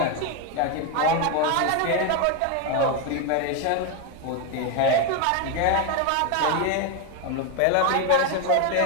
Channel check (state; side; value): different; both; correlation 0.01